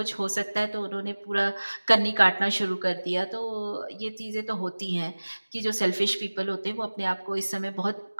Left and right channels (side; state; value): both; inverted; correlation -1.00